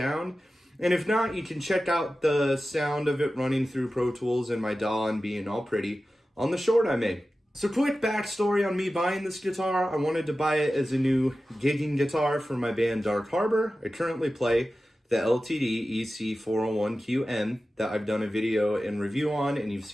And if not, you can check out the sound of it running through Pro Tools and my DAW and being all pretty on the short I made. So quick backstory on me buying this guitar. I wanted to buy it as a new gigging guitar for my band Dark Harbor. I currently play the LTD EC401QM that I've done a video and review on and you've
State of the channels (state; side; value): normal; both; correlation 0.94